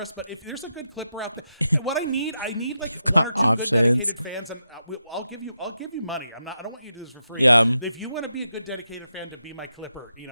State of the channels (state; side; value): inverted; both; correlation -0.86